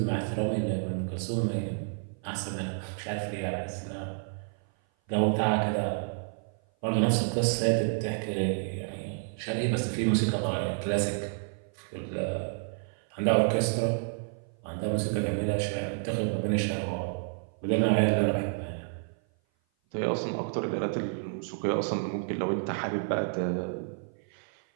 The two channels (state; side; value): silent; left; 55 dB below the other